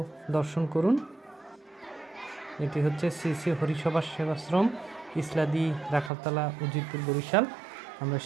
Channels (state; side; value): drops out; left; at 6.1 s